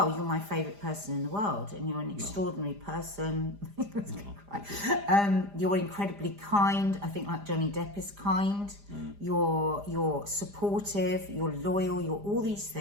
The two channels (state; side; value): late; left; 4.9 ms